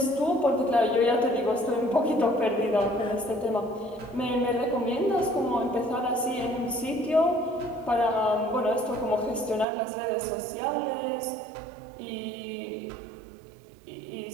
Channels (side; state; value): left; drops out; at 9.7 s